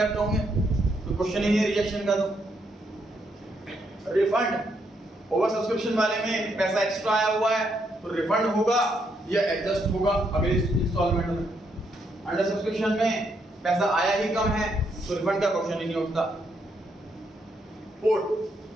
होंगे, तो क्वेश्चन ही नहीं रिजेक्शन का। तो रिफंड ओवर सब्सक्रिप्शन वाले में पैसा एक्स्ट्रा आया हुआ है तो रिफंड होगा या एडजस्ट होगा अगले इंस्टॉलमेंट में। अंडर सब्सक्रिप्शन में पैसा आया ही कम है तो रिफंड का क्वेश्चन ही नहीं उठता।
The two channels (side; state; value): both; normal; correlation 0.76